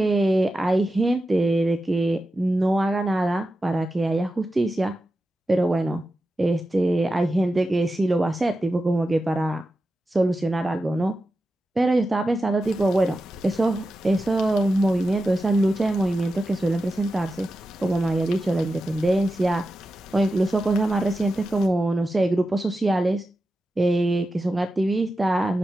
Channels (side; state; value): both; normal; correlation 0.91